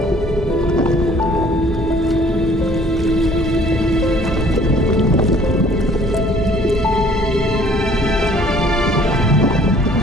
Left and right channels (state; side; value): normal; both; correlation 0.56